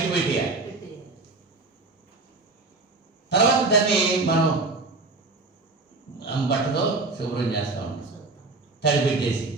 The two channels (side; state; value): left; quieter; 3.5 dB